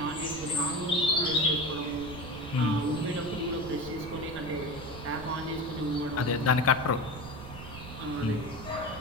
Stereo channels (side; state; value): right; noise; rumble, 13 dB below the sound